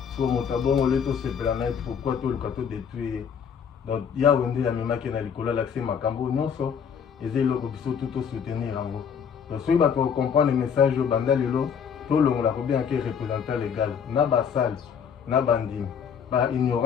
So motabongo leto sepela na pourquoi to le kato détruire. Donc ya wende ya memaki na likola l'accès makambo nyonso. Et eloko biso tout soutenir yango. Donc soki bato comprendre le message au banda lelo to longola ko bien que représentant légal na basal na bandimi ba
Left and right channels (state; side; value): quieter; right; 7.2 dB